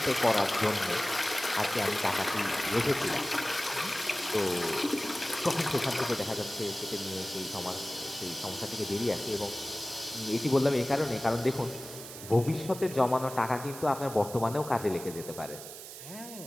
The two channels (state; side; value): noise; right; hiss, 12 dB below the sound